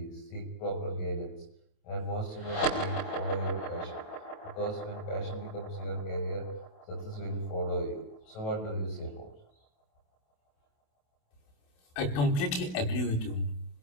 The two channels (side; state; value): right; late; 28 ms